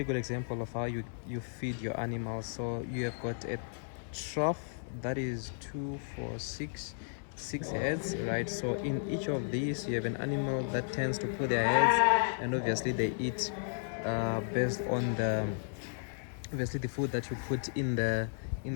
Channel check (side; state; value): right; silent; 55 dB below the other